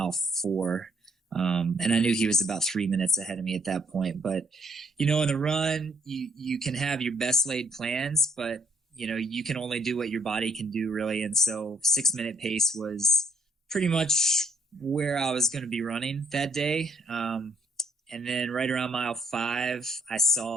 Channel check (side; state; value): both; normal; correlation 0.66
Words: 4. And I knew he was about 3 minutes ahead of me at that point. But, in the run, you can have your best laid plans, but you can only do what your body can do, really. And so 6-minute pace was pretty much where I was going to be running that day. And then right around mile 5, I